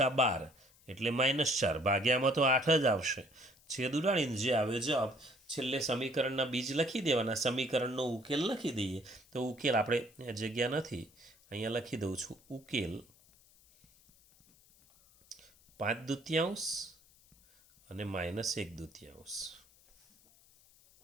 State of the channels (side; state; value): left; noise; hiss, 28 dB below the sound